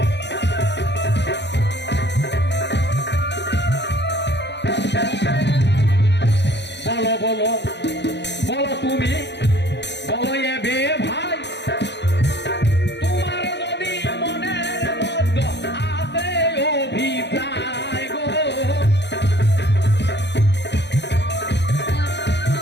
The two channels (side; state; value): right; late; 0.50 ms